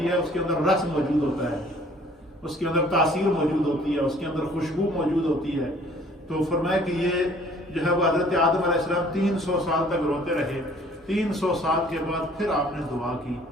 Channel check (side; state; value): both; normal; correlation 0.55